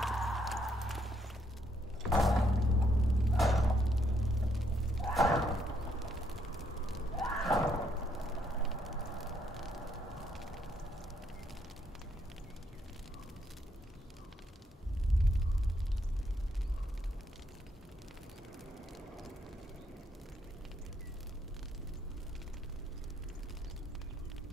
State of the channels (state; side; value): normal; both; correlation 0.73